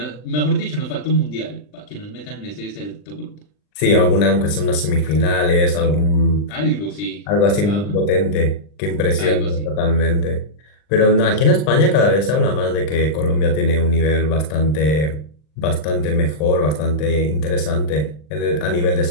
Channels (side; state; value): right; late; 40 ms